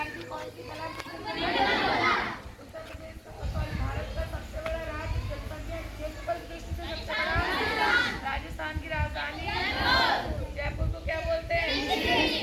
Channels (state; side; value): identical; both; correlation 1.00